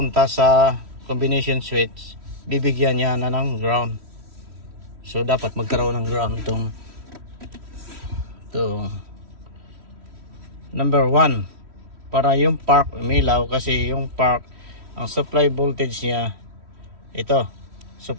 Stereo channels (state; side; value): late; left; 3.1 ms